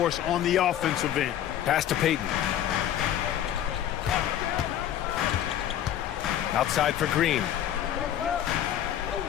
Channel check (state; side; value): quieter; right; 11.0 dB